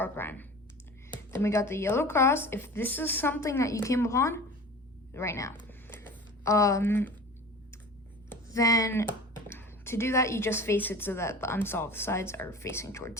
prime. Then we got the yellow cross. If this is something that you came upon right now, then to do that, you just face it so that the unsolved sides are facing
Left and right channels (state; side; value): normal; both; correlation 0.37